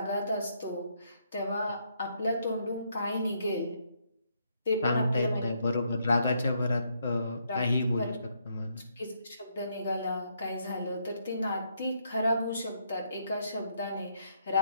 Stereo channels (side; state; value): both; inverted; correlation -0.74